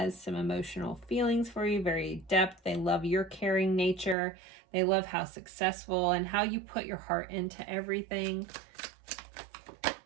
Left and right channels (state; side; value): drops out; left; at 4.2 s